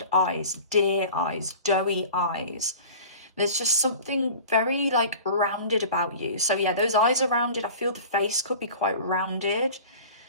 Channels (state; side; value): inverted; both; correlation -0.40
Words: eyes, deer eyes, doughy eyes. There's just something very like rounded about you. So yeah, those eyes are rounded. I feel the face could be quite rounded.